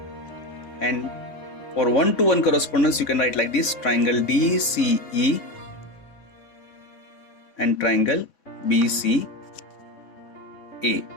And for 1-to-1 correspondence you can write like this: triangle DCE and triangle BCA.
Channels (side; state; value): right; late; 3.7 ms